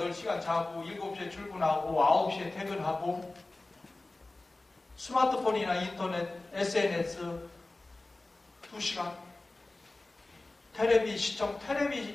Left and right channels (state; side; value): quieter; right; 3.0 dB